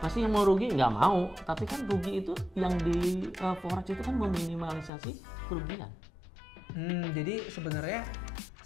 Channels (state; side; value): drops out; right; at 4.9 s